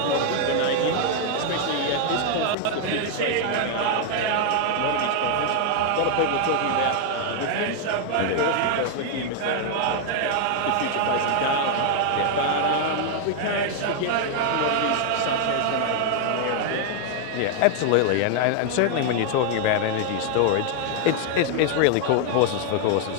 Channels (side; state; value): both; different; correlation 0.00